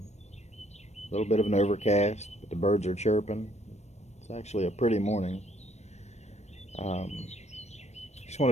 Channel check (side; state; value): right; late; 0.32 ms